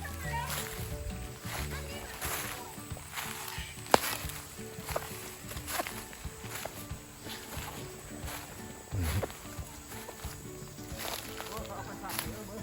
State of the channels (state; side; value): identical; both; correlation 1.00